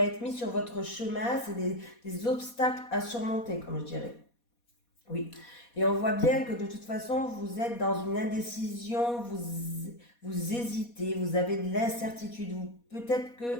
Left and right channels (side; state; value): right; late; 4.2 ms